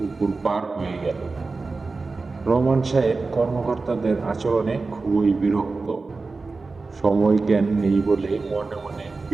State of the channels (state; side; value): quieter; left; 3.9 dB